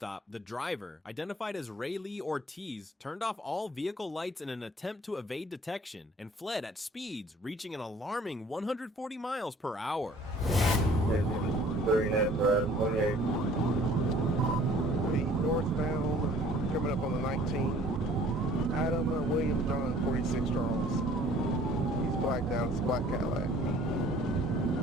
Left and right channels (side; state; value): both; normal; correlation 0.54